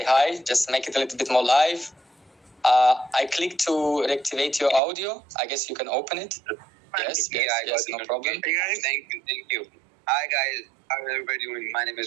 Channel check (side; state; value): left; drops out; at 4.8 s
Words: hi. Just make it a little bit more live. I click to reactivate your audio. I guess you can open it. Yes, no problem. Hey guys, thank you. Hi guys, how is everybody doing? My name